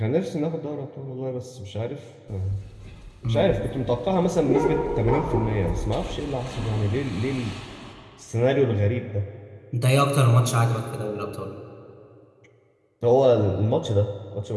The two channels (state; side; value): identical; both; correlation 1.00